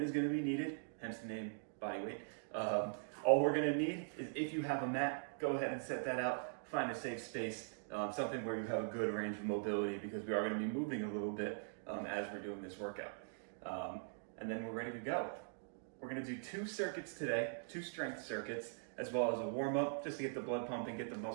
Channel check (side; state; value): left; silent; digital silence